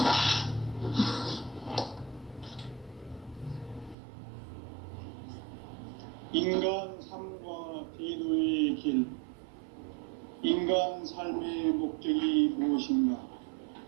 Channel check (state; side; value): drops out; left; at 4.0 s